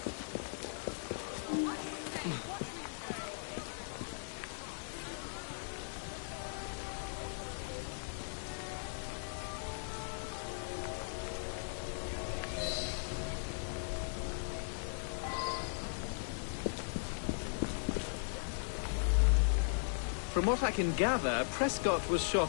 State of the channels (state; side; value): silent; right; digital silence